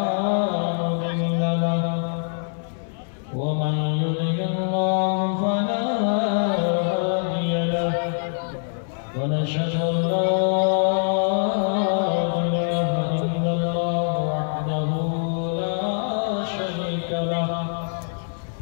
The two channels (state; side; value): silent; right; digital silence